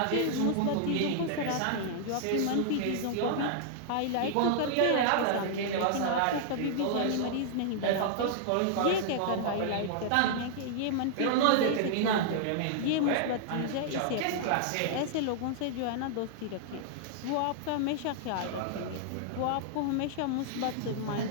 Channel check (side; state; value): both; different; correlation -0.01